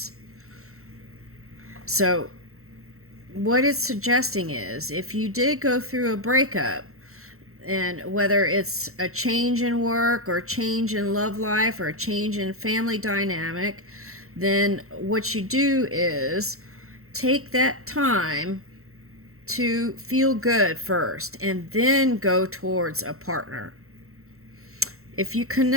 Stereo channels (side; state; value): left; late; 0.63 ms